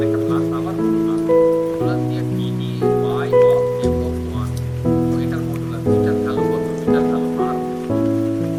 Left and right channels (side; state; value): both; identical; correlation 1.00